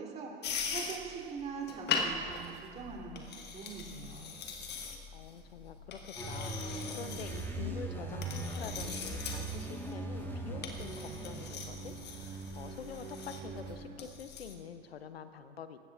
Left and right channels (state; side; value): normal; both; correlation 0.21